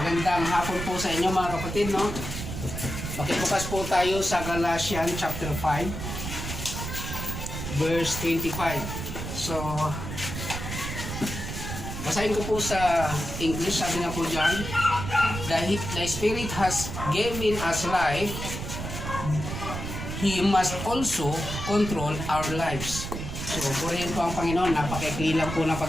Magandang hapon po sa inyo mga kapatid, no? Makibukas po tayo sa Galatians chapter 5 verse 25. So, basahin ko po sa English. Sabi nga po dyan, the Spirit has given us life, He must also control our lives. So, purihin po ang Panginoon. Napakaikli lang po na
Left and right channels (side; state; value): right; noise; rumble, 6 dB below the sound